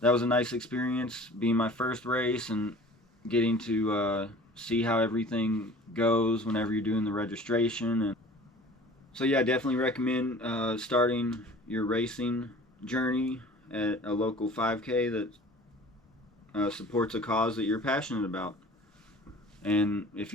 was a nice experience, being my first race and getting to see how everything goes whenever you're doing the registration. And so yeah, I definitely recommend starting your racing journey at a local 5K that supports a cause that you're passionate about. And if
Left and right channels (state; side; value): normal; both; correlation 0.45